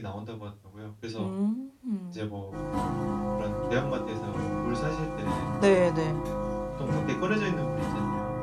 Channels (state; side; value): identical; both; correlation 1.00